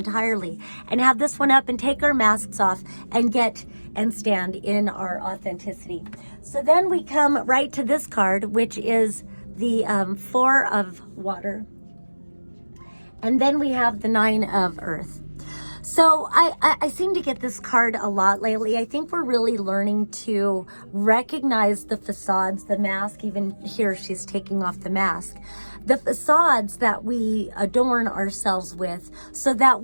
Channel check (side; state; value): both; inverted; correlation -1.00